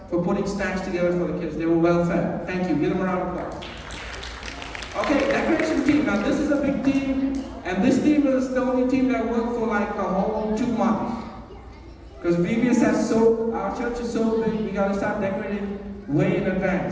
for putting snacks together for the kids. They were well fed. Thank you. Give them a round of applause. Okay, decoration team. Now this is a big team, and this team is the only team that worked for like a whole 2 months. Because VBS our church is so big, we gotta start decorating way in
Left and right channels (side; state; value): both; identical; correlation 1.00